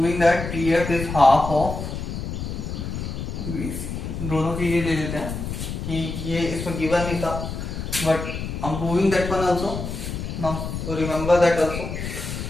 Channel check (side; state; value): left; noise; rumble, 5 dB below the sound